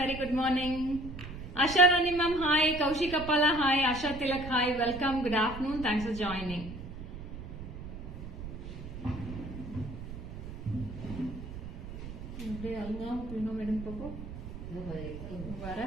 good morning. Asha Rani ma'am, hi. Kaushik Appala, hi. Asha Tilak, hi. Welcome, good afternoon. Thanks for joining.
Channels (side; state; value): right; noise; rumble, 10 dB below the sound